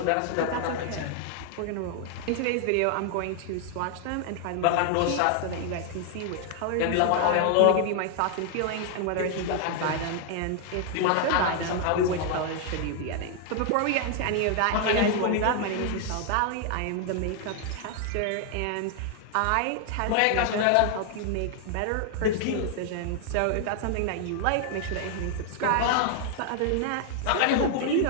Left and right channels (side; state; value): both; different; correlation 0.00